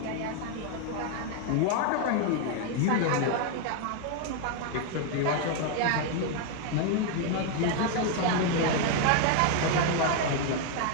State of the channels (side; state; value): both; different; correlation 0.01